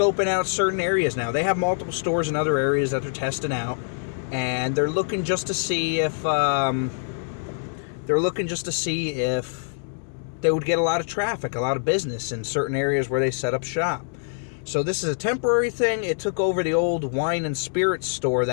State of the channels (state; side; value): silent; right; digital silence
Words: out certain areas now. They have multiple stores in other areas that they're testing out, and they're looking just to see if they would get a lot of traffic, a lot of business in certain areas where they set up shop. So this is a temporary thing. It took over the old wine and spirits store